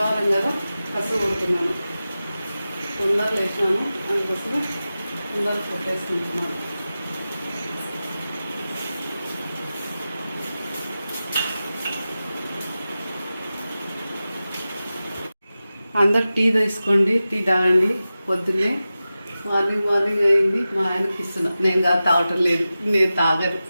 కదా, కసు కొడుతున్నాను. తొందర లేచినాను, అందుకోసమే తొందర కొట్టేసుకుంటున్నాను. అందరు టీ తీసుకోండి, టీ తాగండి. పొద్దున్నే మార్నింగ్ అయింది. మా ఆయనకి ఇస్తున్నా. నేను కాదు, తాగటం లేదు, నేను తాగను,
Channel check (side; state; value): both; inverted; correlation -0.94